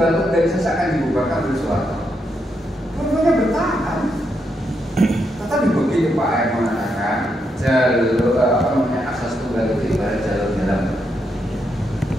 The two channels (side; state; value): both; normal; correlation 0.81